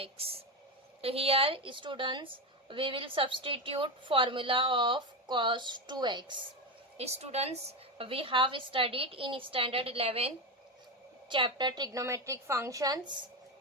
So here students, we will substitute formula of cos 2x. Students, we have studied in standard 11 chapter trigonometric functions.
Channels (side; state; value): both; normal; correlation 0.15